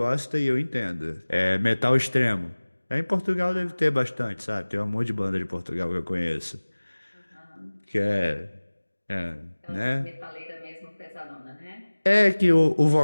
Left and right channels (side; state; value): both; inverted; correlation -1.00